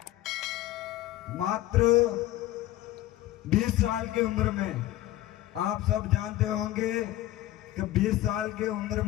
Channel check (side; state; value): right; quieter; 15.0 dB